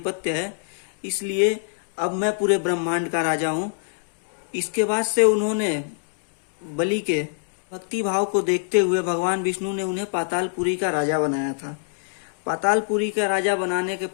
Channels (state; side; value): silent; right; digital silence